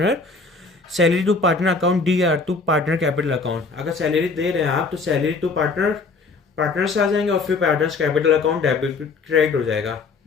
salary to partner account D R to partner capital account. अगर सैलरी दे रहे हैं आप तो सैलरी टू पार्टनर, पार्टनर्स आ जाएंगे और फिर partners capital account debit credit हो जाएगा।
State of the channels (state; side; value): quieter; right; 4.2 dB